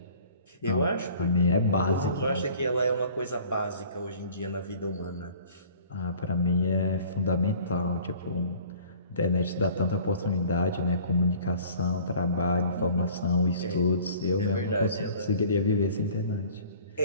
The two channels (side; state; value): both; inverted; correlation -0.49